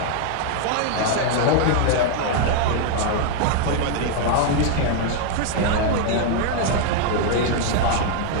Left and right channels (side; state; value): both; different; correlation 0.00